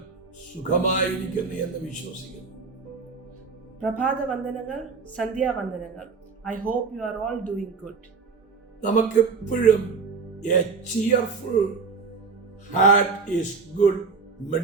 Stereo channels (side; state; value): left; quieter; 4.8 dB